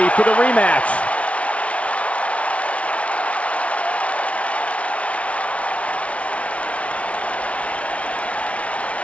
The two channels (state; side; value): late; right; 0.063 ms